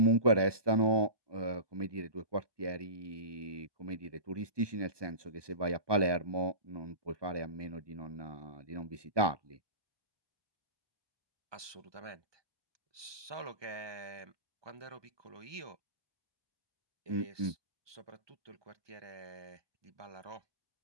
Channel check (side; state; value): left; late; 1.2 ms